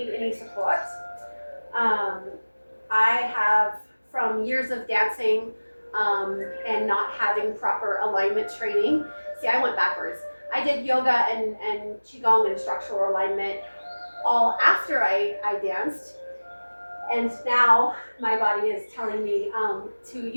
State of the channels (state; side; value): inverted; both; correlation -1.00